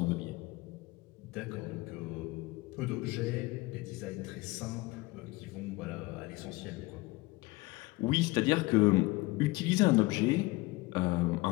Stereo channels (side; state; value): right; quieter; 22.0 dB